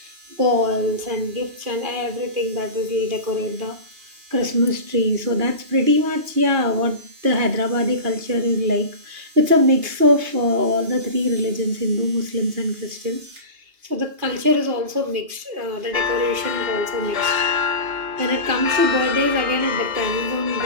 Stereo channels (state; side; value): late; left; 2.8 ms